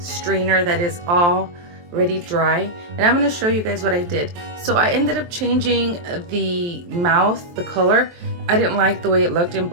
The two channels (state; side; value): late; left; 23 ms